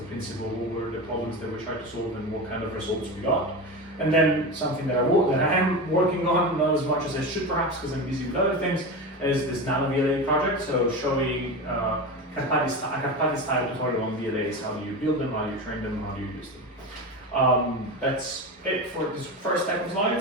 principle, what were the problems that we tried to solve, and what kind of results we got. And then something that I am working on, not as much as I should perhaps because I'm busy with other things, is this nano VLA project. So showing a Carpati-style tutorial on VLAs. How do you build them, how do you train them, how do you use them. That's it for this first type of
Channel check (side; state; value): both; normal; correlation 0.23